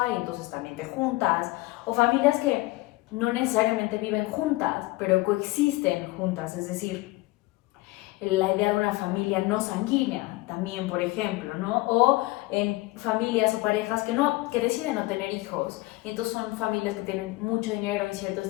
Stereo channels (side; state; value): right; quieter; 20.9 dB